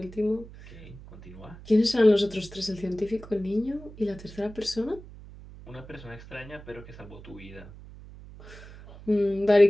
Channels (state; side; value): noise; right; hum, 17 dB below the sound